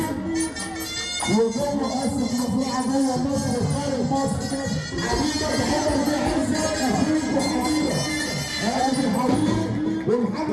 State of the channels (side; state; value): both; identical; correlation 1.00